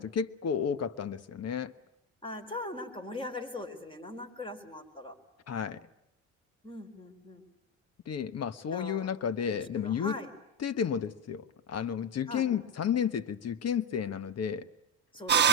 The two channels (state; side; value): normal; both; correlation 0.07